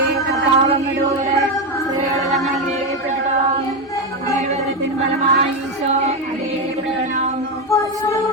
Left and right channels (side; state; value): both; normal; correlation 0.10